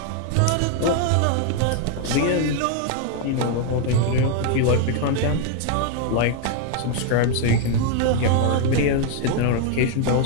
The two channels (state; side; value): different; both; correlation 0.00